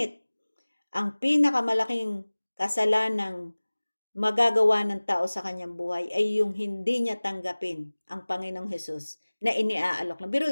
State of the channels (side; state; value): both; inverted; correlation -1.00